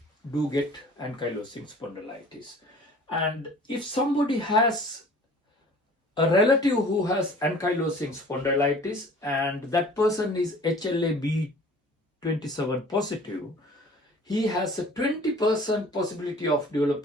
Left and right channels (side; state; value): both; normal; correlation 0.48